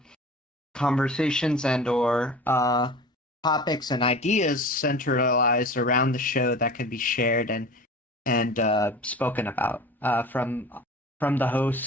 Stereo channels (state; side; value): normal; both; correlation 0.38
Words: conversations and or topics and ideas centralized around the show that can be shared and spoken about from the